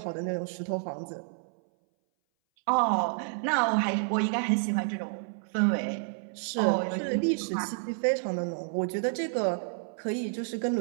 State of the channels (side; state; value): left; silent; 58 dB below the other